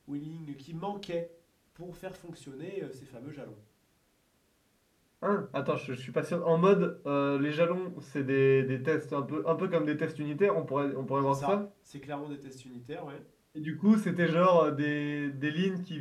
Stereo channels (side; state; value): both; identical; correlation 1.00